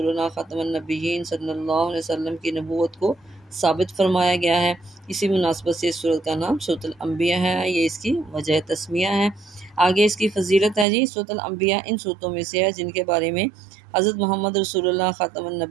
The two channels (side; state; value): left; drops out; at 10.9 s